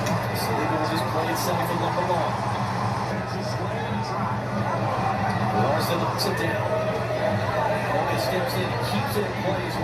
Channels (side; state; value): both; identical; correlation 1.00